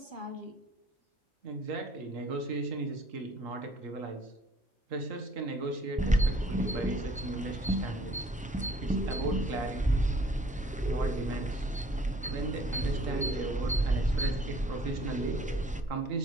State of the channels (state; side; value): normal; both; correlation 0.58